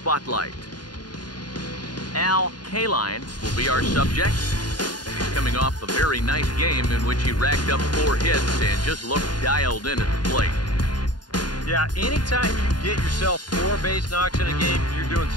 KALINE will be our subject. He's coming off a very nice game in which he racked up 4 hits and just looked dialed in at the plate. Yeah, anytime you get yourself 4 base knocks in a game, you're doing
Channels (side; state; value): right; late; 0.70 ms